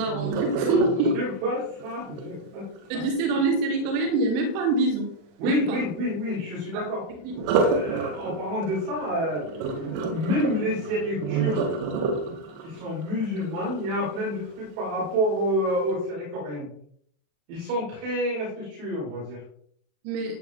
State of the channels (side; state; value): left; late; 37 ms